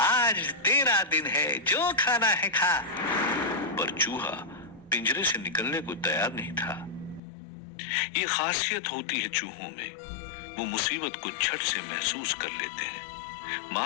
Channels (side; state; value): right; drops out; at 7.2 s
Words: तेरा दिन है, जो खाना है खा। पर चूहा पिंजरे से निकलने को तैयार नहीं था। ये खासियत होती है चूहों में, वो मुसीबत को झट से महसूस कर लेते हैं।